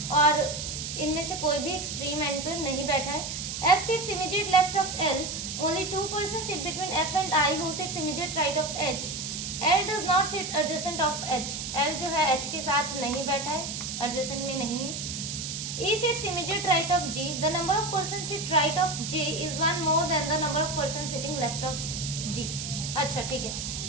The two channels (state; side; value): noise; right; hiss, 5 dB below the sound